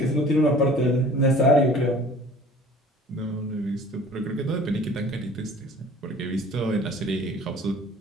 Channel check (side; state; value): both; normal; correlation 0.48